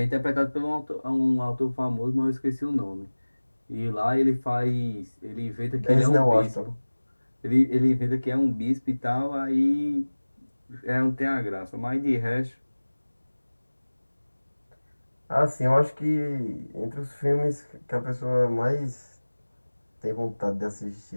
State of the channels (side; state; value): both; inverted; correlation -1.00